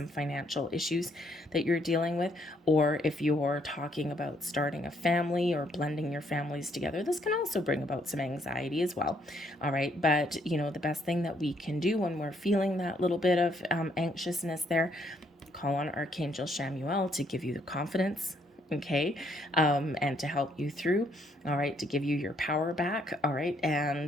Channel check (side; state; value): both; normal; correlation 0.70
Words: financial issues that you're dealing with. Or if you're talking about starting a family or blending your families together, this can also bring about some anxiety as well. All right. But, the best thing that we can do when we're feeling that little bit of anxiousness there, call on Archangel Chamuel to give you the confidence, okay, and to help you through, all right, to give you your power back, all right,